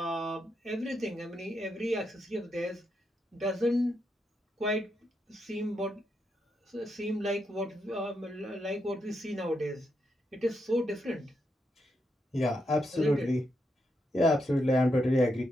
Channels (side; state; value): both; normal; correlation 0.82